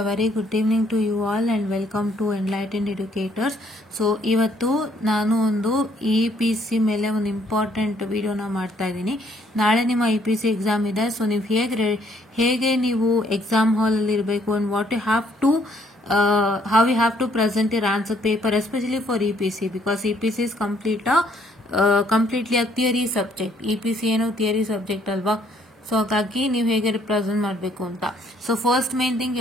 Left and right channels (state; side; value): normal; both; correlation 0.66